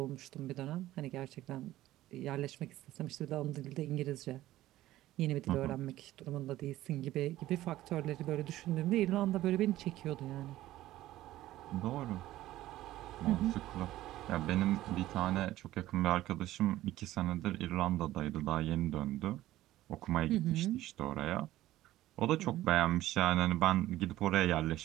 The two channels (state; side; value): quieter; left; 15.2 dB